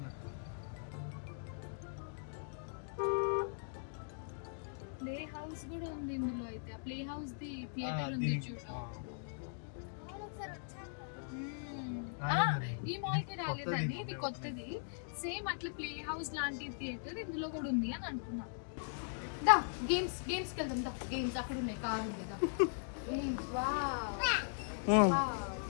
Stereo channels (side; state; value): right; silent; digital silence